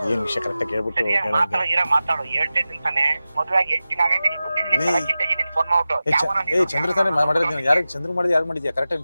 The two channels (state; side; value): inverted; both; correlation -0.95